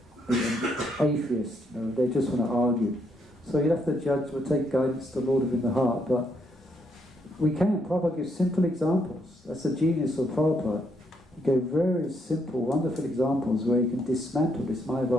an atheist, you know, they just want to argue. So you have to judge. We'll take guidance to the Lord within the heart, but we can. Prabhupada gives simple examples. That's the genius of Prabhupada. He gave very simple, wonderful examples where you can dismantle this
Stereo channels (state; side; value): normal; both; correlation 0.75